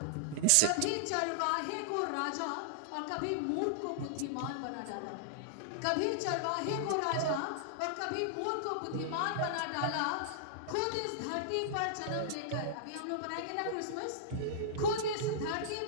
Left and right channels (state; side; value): different; both; correlation -0.02